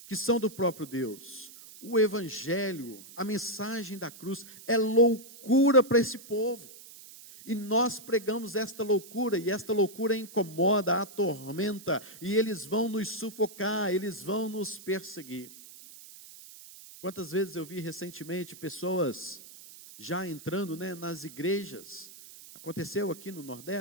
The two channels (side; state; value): right; noise; hiss, 18 dB below the sound